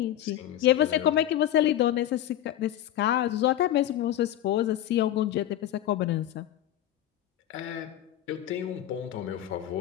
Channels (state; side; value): quieter; right; 12.3 dB